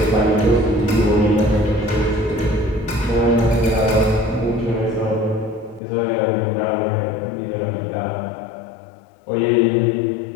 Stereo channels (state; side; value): drops out; right; at 5.8 s